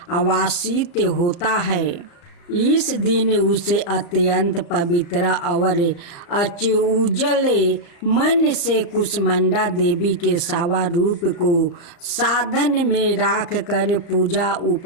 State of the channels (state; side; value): late; right; 35 ms